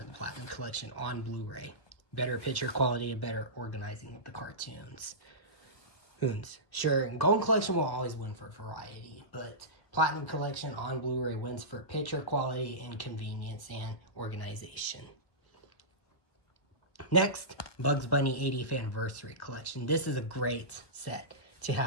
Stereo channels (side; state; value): right; late; 1.4 ms